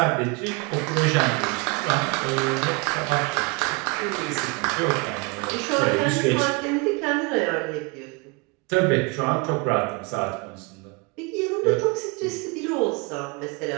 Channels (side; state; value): left; quieter; 29.3 dB